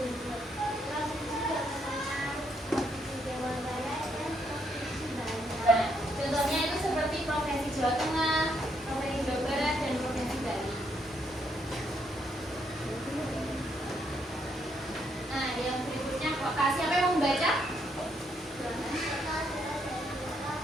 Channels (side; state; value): both; normal; correlation 0.74